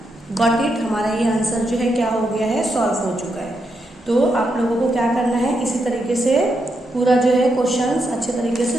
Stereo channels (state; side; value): normal; both; correlation 0.82